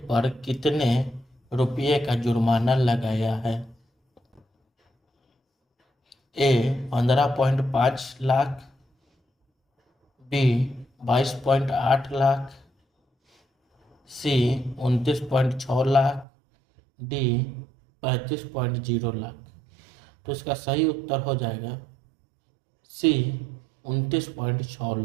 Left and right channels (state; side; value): drops out; left; at 16.2 s